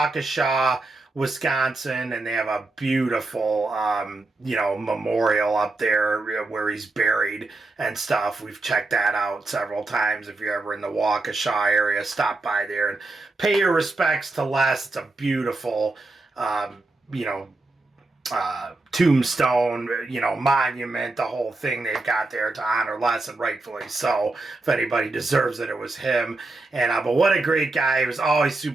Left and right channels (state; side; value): quieter; left; 3.1 dB